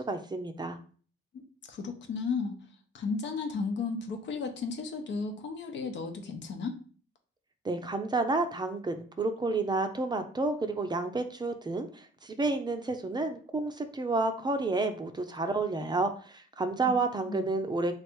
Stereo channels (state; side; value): normal; both; correlation 0.54